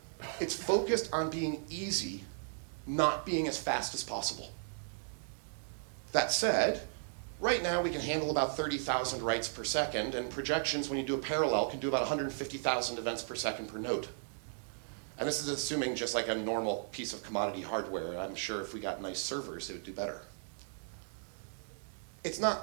It's focused on being easy, not being as fast as possible. That said, right now we can handle about 30,000 writes per second, and projections, when you do a parallel, can do about 150,000 events per second per node. And this is assuming just like a normal piece of commodity hardware. I'm sure if we got nice servers, it would do better. It's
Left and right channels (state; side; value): silent; left; digital silence